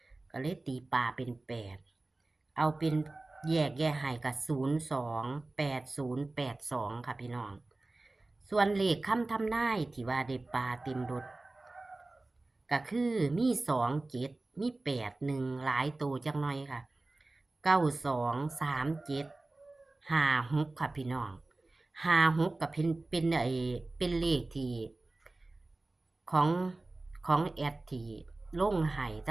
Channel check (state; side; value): quieter; left; 3.0 dB